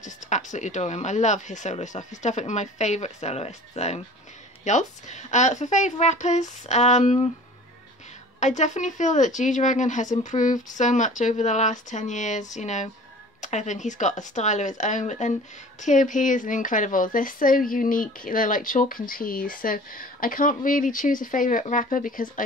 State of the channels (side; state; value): both; normal; correlation 0.44